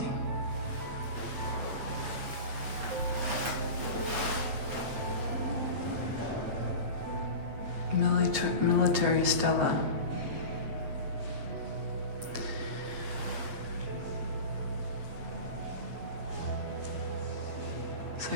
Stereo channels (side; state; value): left; late; 8.7 ms